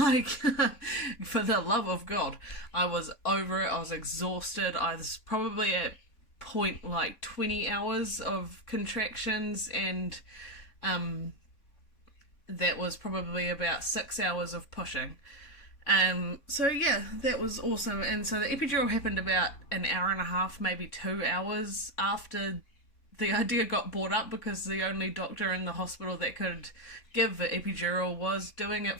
for the love of God, I was over it. I was exhausted. I was probably at point like 20 hours of contractions, and that was probably about 6 hours of pushing. So yeah, that was awesome. And so the epidural happened about an hour and a half, maybe 2 hours after the idea got brought up, because the only doctor in the hospital that could give the epidural was doing it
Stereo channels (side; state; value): right; late; 3.6 ms